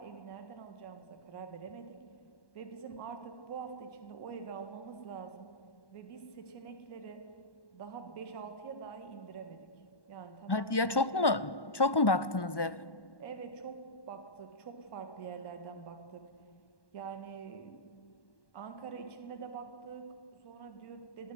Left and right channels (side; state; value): right; late; 1.1 ms